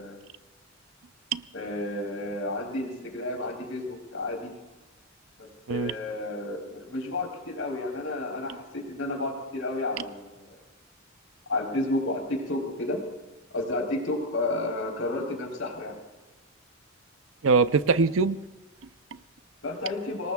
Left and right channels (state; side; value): normal; both; correlation 0.01